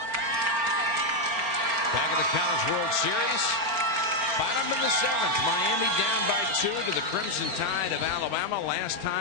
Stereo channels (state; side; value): late; left; 4.4 ms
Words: World Series. Bottom of the 7th. Miami down by 2 to the Crimson Tide of Alabama. Last